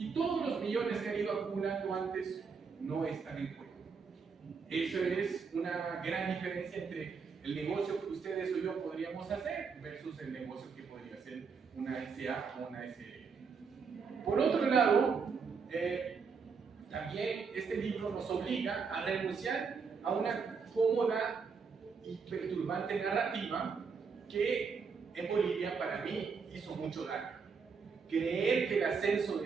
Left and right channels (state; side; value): quieter; left; 5.5 dB